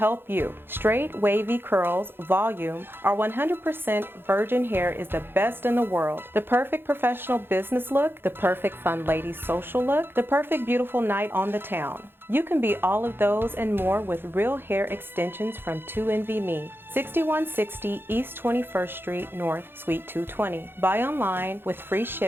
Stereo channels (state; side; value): late; left; 0.10 ms